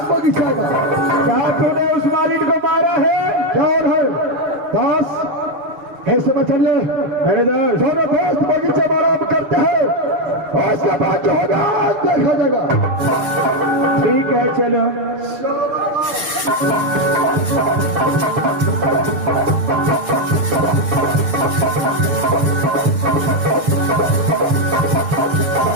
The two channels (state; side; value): late; left; 6.7 ms